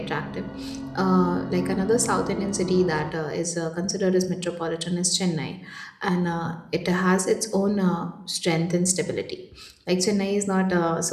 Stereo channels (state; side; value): identical; both; correlation 1.00